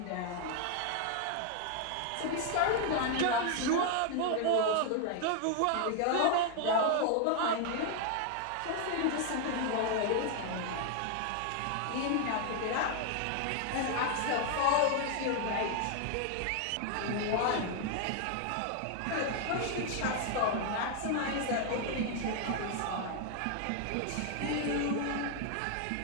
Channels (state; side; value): different; both; correlation 0.00